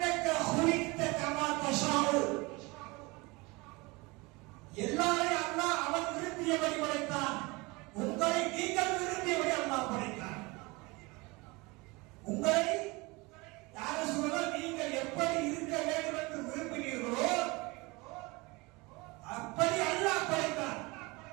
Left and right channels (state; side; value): quieter; left; 24.9 dB